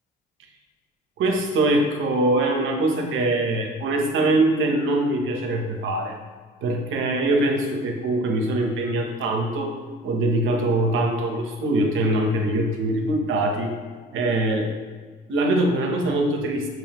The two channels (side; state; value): both; normal; correlation 0.43